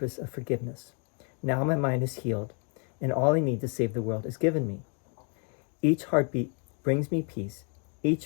of forgiveness. Now my mind is healed, and all I need to save the world is given me. Each heartbeat brings me peace.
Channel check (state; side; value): quieter; right; 39.3 dB